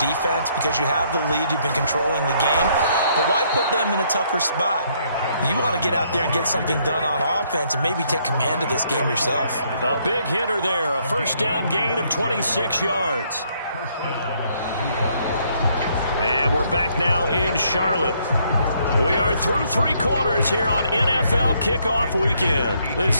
because you have the lead, you've been controlling the game. But why put them in a tougher spot? You want to get out there and get something done on offense and maybe take command of this game yourself. A big hitter there, a first down gain of 26 yards. And we're back now in Charlotte. We are through 3 quarters here on NFL Kickoff Weekend.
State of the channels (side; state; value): both; inverted; correlation -0.69